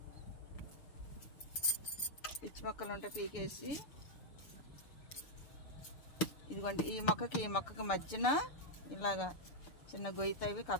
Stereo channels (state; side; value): late; right; 6.8 ms